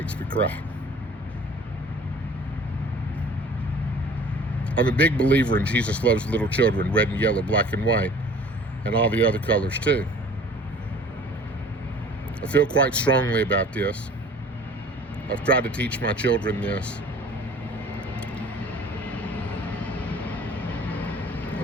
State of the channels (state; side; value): normal; both; correlation 0.47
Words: me cry. I'm a big believer in Jesus loves little children, red and yellow, black and white, and all the other colors too. I feel quite strongly about this. I've tried to teach my children this.